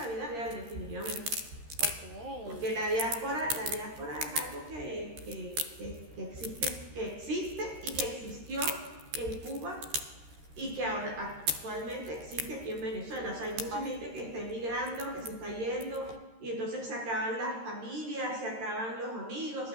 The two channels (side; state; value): left; late; 13 ms